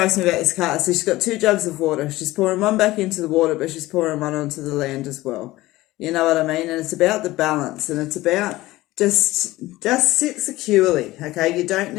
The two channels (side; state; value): right; quieter; 17.9 dB